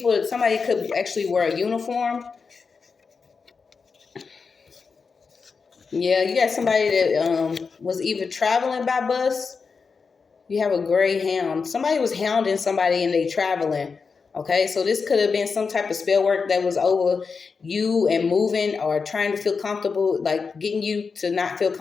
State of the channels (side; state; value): right; quieter; 5.1 dB